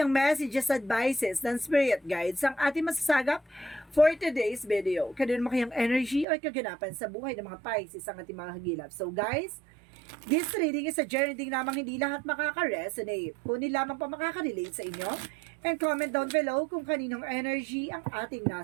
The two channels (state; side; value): drops out; left; at 6.2 s